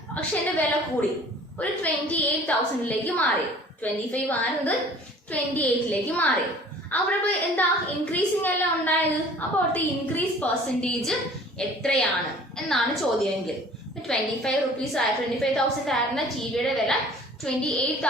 അക്ഷയന്റെ വില കൂടി ഒരു 28,000 മാറി. 25 ആയിരുന്നത് 28 മാറി. അവിടെ ഇപ്പോൾ എന്താ? ഇൻക്രീസിങ് അല്ല ഉണ്ടായത്. അപ്പോൾ അവിടുത്തെ ഇൻക്രീസ് പെർസെന്റേജ് എത്രയാണ് എന്നാണ് ചോദ്യമെങ്കിൽ. 25,000 ആയിരുന്ന ടിവിയുടെ വില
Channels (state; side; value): normal; both; correlation 0.49